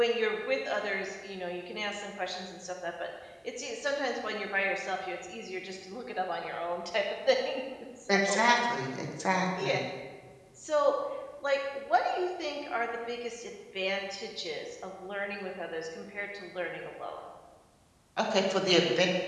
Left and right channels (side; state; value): both; identical; correlation 1.00